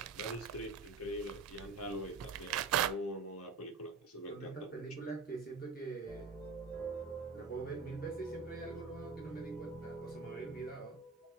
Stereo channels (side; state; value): left; quieter; 4.6 dB